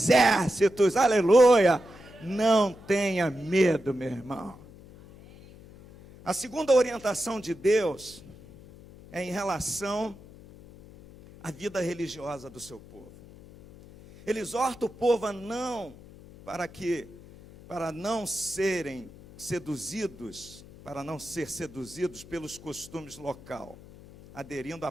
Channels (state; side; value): noise; left; hum, 20 dB below the sound